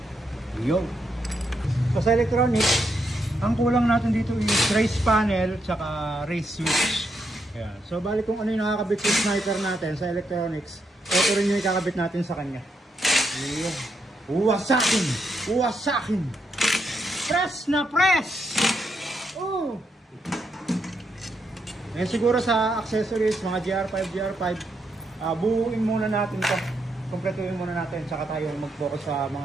Yun. So sa electronics, ang kulang natin dito is race panel tsaka race switch. Ayan. So bali kung ano yung nakakabit yung sniper natin sa electronics, ito rin yung ikakabit natin sa kanya. Ayan. Uwasakin! Uwasakin! Press na press! Oh! Eh siguro sa accessories, mga GR5, buuin muna natin to. Kompletuhin muna natin, tsaka tayo mag-focus sa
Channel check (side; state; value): both; normal; correlation 0.79